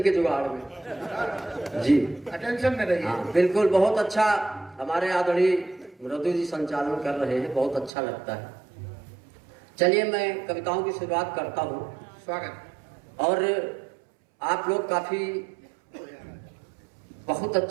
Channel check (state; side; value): drops out; left; at 7.9 s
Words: के जुगाड़ में। जी टेंशन में रहिए। हाँ बिल्कुल। बहुत अच्छा हमारे आदरणीय मृदु जी संचालन कर रहे हैं, बहुत अच्छा लगता है। चलिए मैं कविताओं की शुरुआत करता हूँ। स्वागत। और आप लोग काफी बहुत